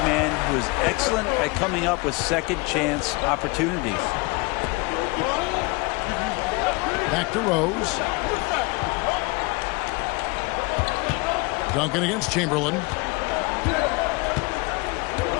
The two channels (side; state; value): right; quieter; 26.3 dB